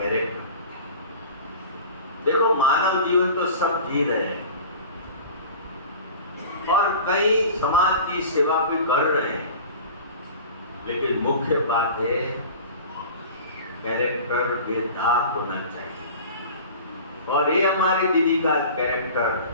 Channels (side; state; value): both; inverted; correlation -0.39